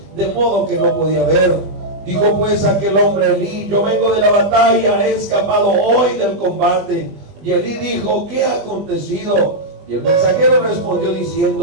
de modo que no podía ver. Dijo pues aquel hombre a Elí: yo vengo de la batalla, he escapado hoy del combate. Y Elí dijo: ¿qué ha acontecido? Y el mensajero respondió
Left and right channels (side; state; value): left; late; 20 ms